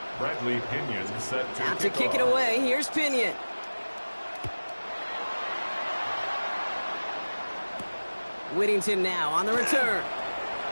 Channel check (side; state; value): both; inverted; correlation -1.00